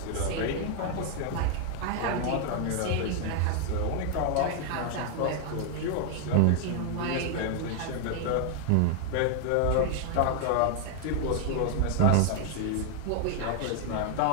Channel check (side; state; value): both; different; correlation 0.00